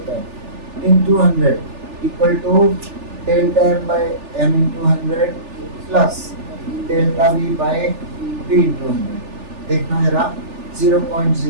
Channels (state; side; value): late; left; 3.4 ms